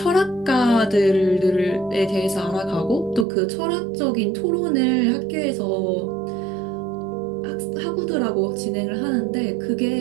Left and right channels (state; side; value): drops out; left; at 3.2 s